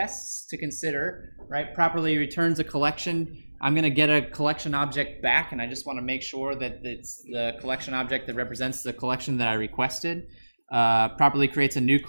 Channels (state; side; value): inverted; both; correlation -1.00